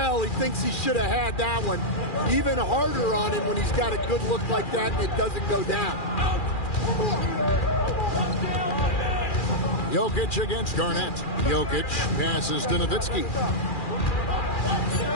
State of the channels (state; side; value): late; right; 2.4 ms